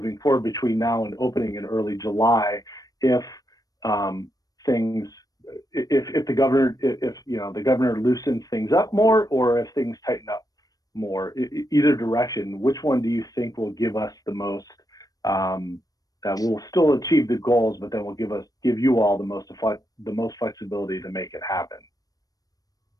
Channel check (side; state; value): right; late; 0.18 ms